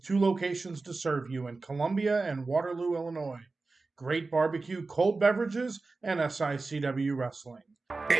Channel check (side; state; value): left; quieter; 3.7 dB